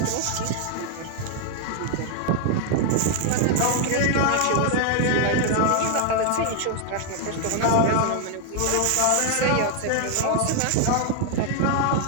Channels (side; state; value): both; different; correlation 0.00